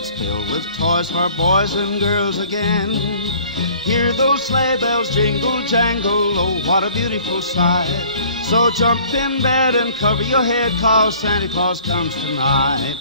filled with toys for boys and girls again. Hear those sleigh bells jingle, jangle, oh, what a beautiful sight. So jump in bed and cover your head, 'cause Santa Claus comes tonight.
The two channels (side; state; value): both; inverted; correlation -0.53